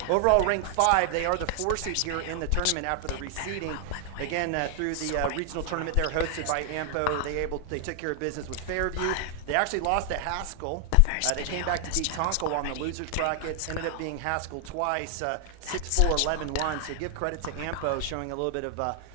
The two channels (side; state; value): both; different; correlation 0.00